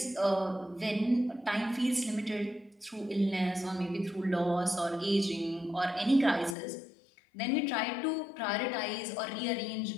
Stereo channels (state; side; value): drops out; right; at 6.6 s